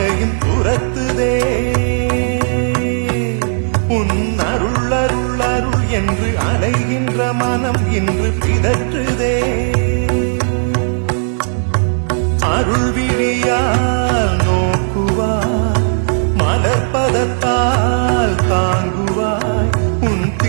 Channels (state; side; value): silent; left; digital silence